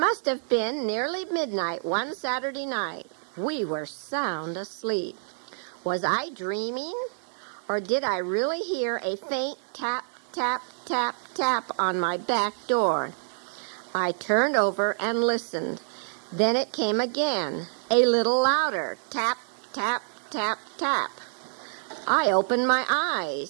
have been nearly midnight one Saturday night. We were sound asleep. Was I dreaming? Or did I really hear a faint tap, tap, tap, tap on my back door? I turned over and listened. Then it came again, a little louder. Tap, tap, tap, tap. I opened my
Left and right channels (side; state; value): left; silent; digital silence